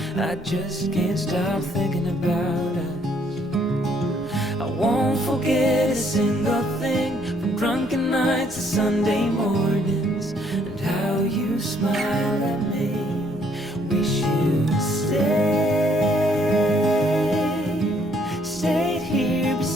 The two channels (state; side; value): normal; both; correlation 0.66